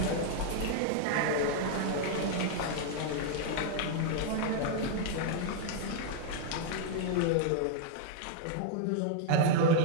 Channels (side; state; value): both; different; correlation 0.00